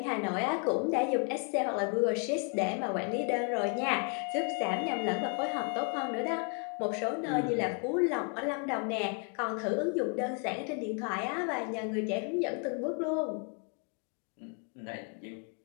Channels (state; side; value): quieter; right; 39.0 dB